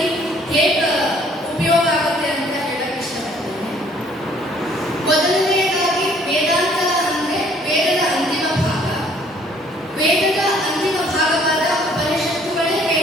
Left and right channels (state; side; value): normal; both; correlation 0.59